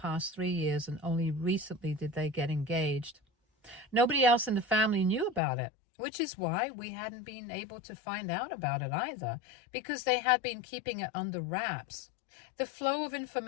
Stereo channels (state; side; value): drops out; right; at 5.4 s